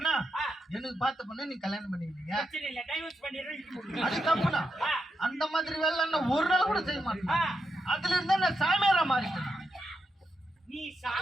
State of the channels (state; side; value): normal; both; correlation 0.85